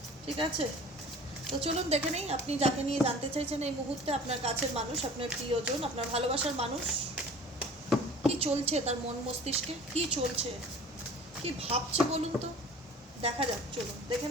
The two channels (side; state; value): both; normal; correlation 0.45